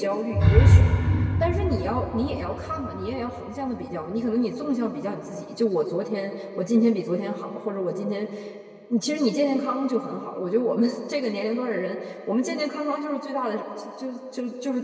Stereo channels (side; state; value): both; identical; correlation 1.00